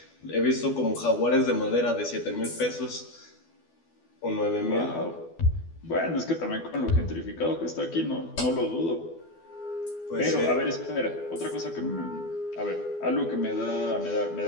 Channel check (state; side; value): late; right; 12 ms